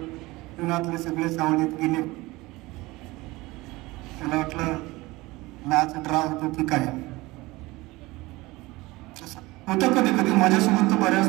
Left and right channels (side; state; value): left; quieter; 21.0 dB